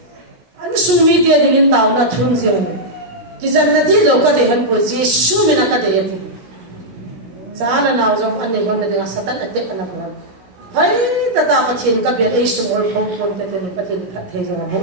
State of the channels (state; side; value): late; left; 17 ms